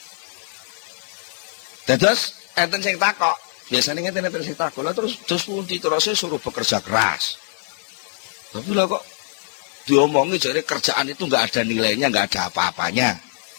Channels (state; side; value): silent; right; 64 dB below the other